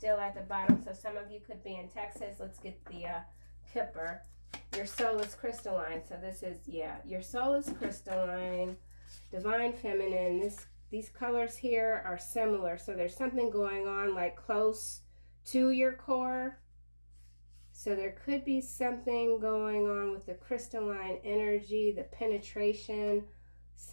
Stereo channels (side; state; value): both; inverted; correlation -1.00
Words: at the bottom, so some of you could be in Texas. Let's get the Kipper. Your soul is crystalline. So this is, yeah, your soul is crystalline, divine feminine. These colors here are similar, so there's something going on like close to your core. So there could be something going on with the crystalline energy, the penetration,